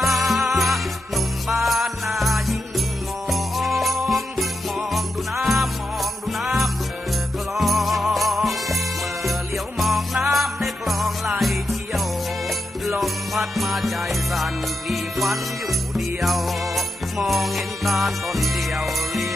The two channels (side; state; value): both; normal; correlation 0.87